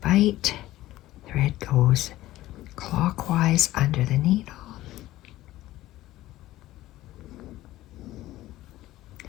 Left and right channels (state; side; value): quieter; right; 15.8 dB